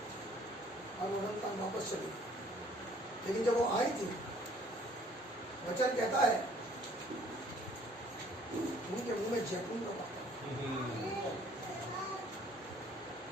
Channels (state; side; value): normal; both; correlation 0.58